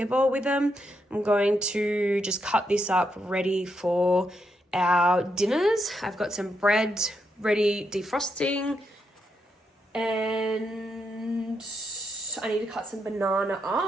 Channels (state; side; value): normal; both; correlation 0.81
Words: bowl with them. I'm going to just cut this up ready for our dinners. I've got some bread ready defrosting, and I need to cut some banana